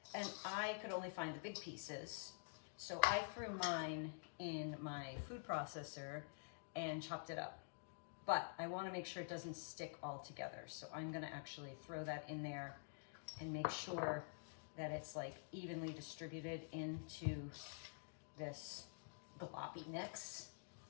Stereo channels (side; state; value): right; silent; digital silence